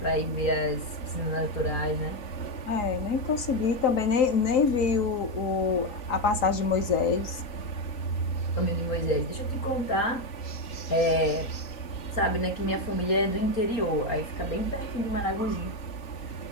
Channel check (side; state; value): right; late; 3.9 ms